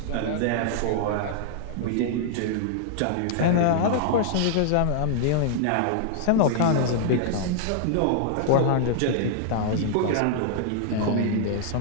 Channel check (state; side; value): different; both; correlation -0.01